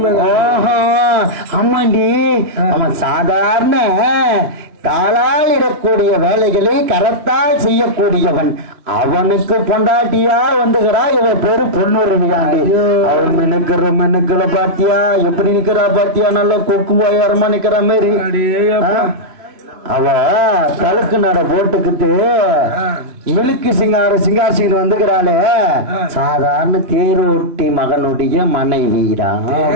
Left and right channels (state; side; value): late; left; 3.0 ms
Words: ஓஹோ, ஆமாண்டி. அவன் சாதாரண காலால் இடக்கூடிய வேலைகளை கரத்தால் செய்யக்கூடியவன். அவனுக்கு பொண்டாட்டியா வந்துகிறா இவ பேரு பொண்ணுருவியாண்டி. அவன் மெனுக்களை பாத்தியா எப்படி நிக்கிறா பாத்தியா? நல்ல கொக்கு போயாரமா நிக்கிற மாதிரி. அவ தலுக்கு நட போட்டுக்கிட்டு மிலுக்கு சிங்காரசிங்க வந்துக்கிறாளே. சாதாரண தேரோட்டி மகனுடைய மனைவிடா.